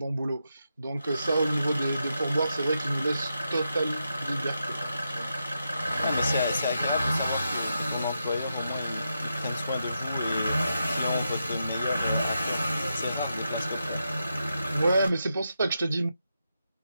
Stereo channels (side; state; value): both; inverted; correlation -0.86